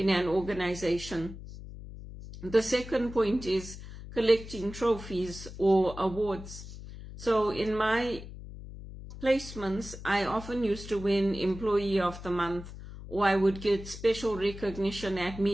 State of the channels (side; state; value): left; noise; hum, 13 dB below the sound